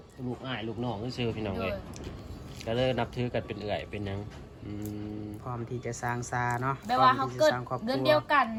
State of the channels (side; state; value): both; identical; correlation 1.00